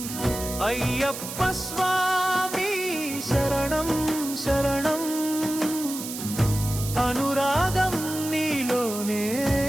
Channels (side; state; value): right; noise; hiss, 8 dB below the sound